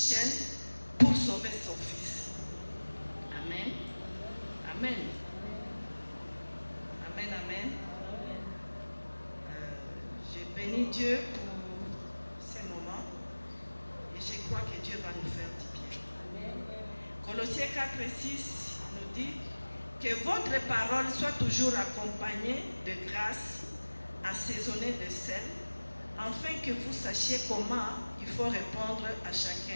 pour sauver son fils. Amen. Amen. Amen, amen. Je bénis Dieu pour ces moments et je crois que Dieu va nous faire du bien. Colossiens 4:6 nous dit que votre parole soit toujours accompagnée de grâce, assaisonnée de sel, afin que vous sachiez comment il faut répondre à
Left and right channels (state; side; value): inverted; both; correlation -1.00